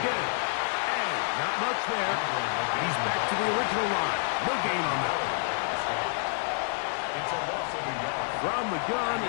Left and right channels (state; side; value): silent; right; 59 dB below the other